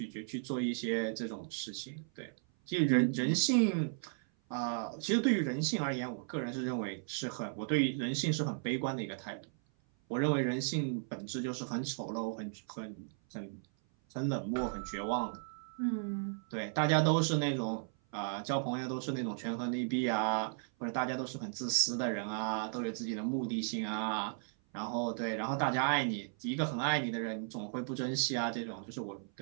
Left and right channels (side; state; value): left; silent; 54 dB below the other